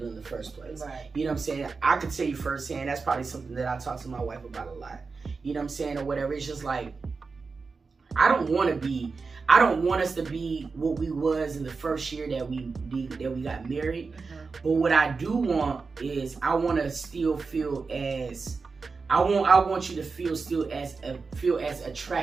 in the first place. You know what I'm saying? I could tell you firsthand, that's probably something that I talk to my wife about a lot. You know what I'm saying? Or whatever. It's just like, I don't want us to be what we was in the first year that we got married. But what I do want is, I want to still feel as, I want you to feel as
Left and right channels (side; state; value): left; quieter; 4.6 dB